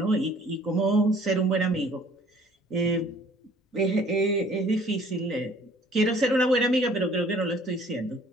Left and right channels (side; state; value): both; normal; correlation 0.55